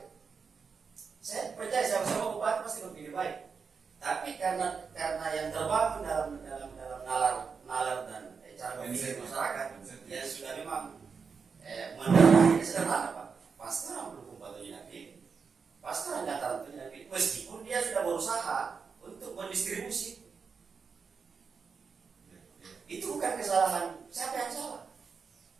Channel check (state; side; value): quieter; left; 5.6 dB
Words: Saya percaya sama bupati pasti berpikir baik. Tapi karena yang terbangun dalam nalar dan cara berpikir masyarakat yang sudah memang mendarahnya sederhana Pak. Pasti orang Bulukumba itu yakin. Pasti orang Dataran itu yakin. Meskipun dia sudah berusaha untuk mendistribusi bukan kesalahan siapa yang salah.